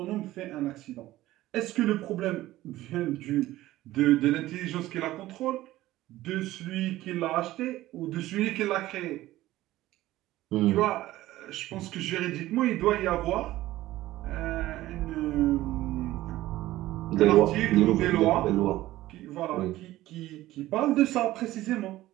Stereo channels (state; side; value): quieter; left; 16.0 dB